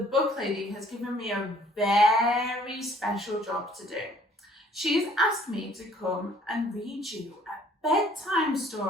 lady, has given me a very special job to do. She's asked me to come and read you a bedtime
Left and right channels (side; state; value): both; normal; correlation 0.58